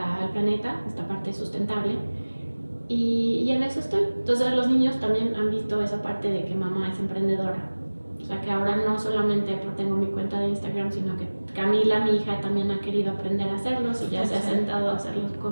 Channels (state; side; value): inverted; both; correlation -1.00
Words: planeta, esta parte sustentable. Y en eso estoy. Entonces los niños también han visto esa parte de que mamá es emprendedora. O sea que ahora no solamente tengo mi cuenta de Instagram, sino que Camila, mi hija, también ha querido aprender a hacerlos y ya se ha sentado a hacerlos